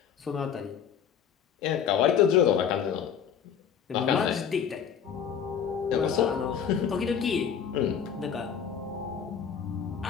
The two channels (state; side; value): quieter; right; 7.9 dB